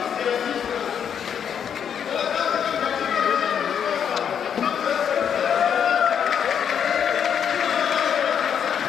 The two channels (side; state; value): right; quieter; 8.1 dB